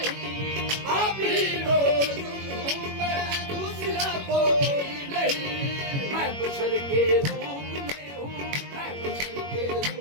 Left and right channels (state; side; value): late; left; 21 ms